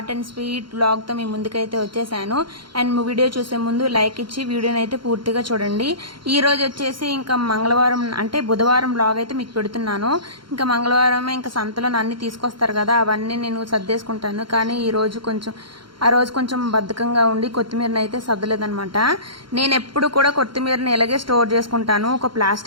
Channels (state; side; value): late; left; 0.73 ms